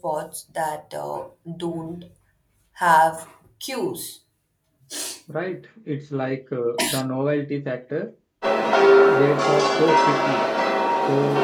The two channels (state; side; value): identical; both; correlation 1.00